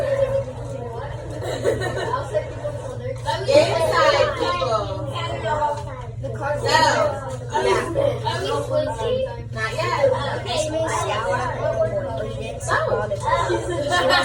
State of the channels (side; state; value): both; identical; correlation 1.00